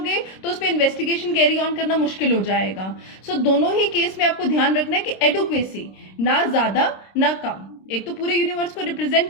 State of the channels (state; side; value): late; right; 26 ms